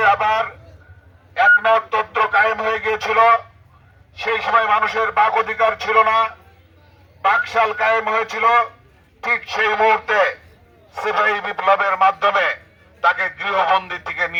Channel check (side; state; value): both; identical; correlation 1.00